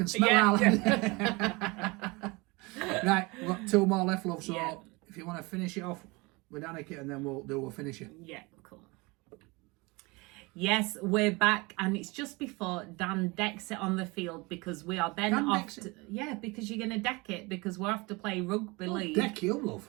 smell Yeah. Right, we've got two more left, love. So Yeah. if you want to finish it off with Danika, and then we'll finish it. Yeah, cool. Yes, we're back, and it's just before Dan decks it on the field because we are then Dan off. decks it? Yeah, because you're going to deck it because we're off to play rugby league. Deck you, love.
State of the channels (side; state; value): left; quieter; 25.4 dB